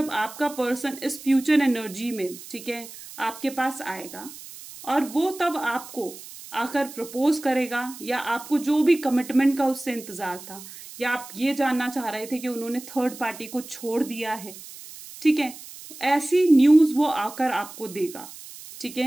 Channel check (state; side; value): noise; right; hiss, 15 dB below the sound